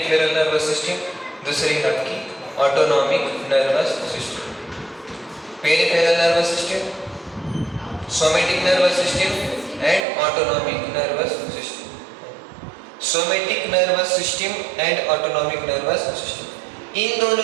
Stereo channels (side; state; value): left; drops out; at 10.0 s